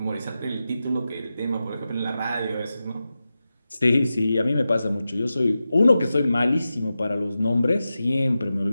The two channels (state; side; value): inverted; both; correlation -0.92